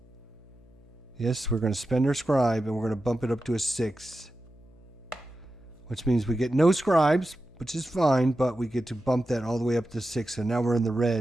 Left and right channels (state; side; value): noise; left; hum, 25 dB below the sound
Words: Yes, we're going to spend our scribe and we're going to bump it up to a 6. which means we get no scribes, which is fine, but we get to bump that all the way up to 6. So now we're in the